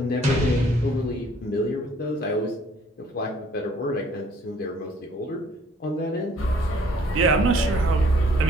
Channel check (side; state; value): both; normal; correlation 0.60